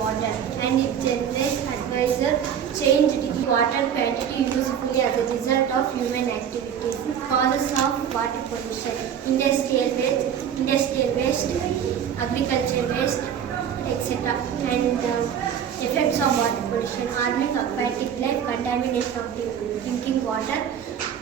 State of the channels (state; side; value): quieter; left; 8.6 dB